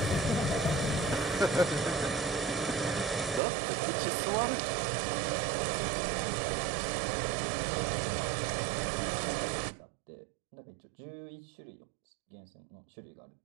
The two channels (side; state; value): left; drops out; at 3.4 s